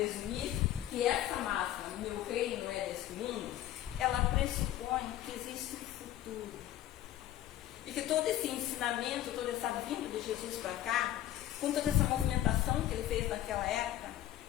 que essa máxima, meu reino não é desse mundo, ela pressupõe que existe um futuro. E que todo esse ensinamento, toda essa vinda de Jesus para cá, com toda essa movimentação que ele fez naquela época,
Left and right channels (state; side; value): quieter; right; 13.1 dB